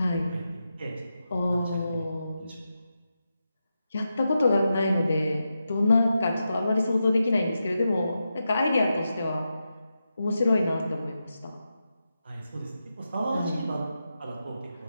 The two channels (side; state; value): both; inverted; correlation -0.88